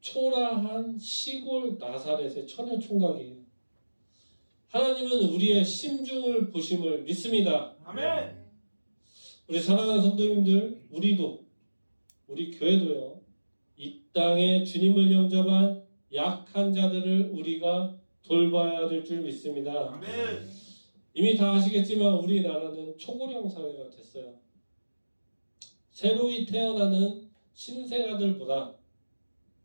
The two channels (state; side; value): inverted; both; correlation -1.00